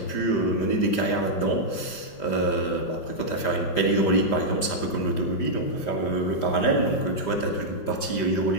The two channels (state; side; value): late; right; 5.0 ms